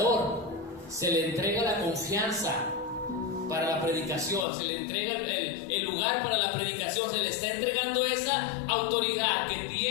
se le entrega la confianza para la predicación, se le entrega el lugar para la predicación, se le está entregando esa autoridad que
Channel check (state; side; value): drops out; right; at 4.5 s